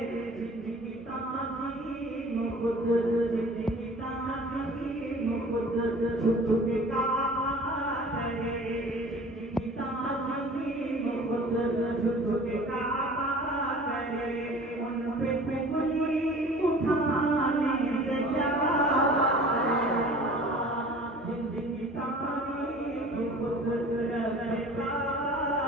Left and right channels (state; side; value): normal; both; correlation 0.45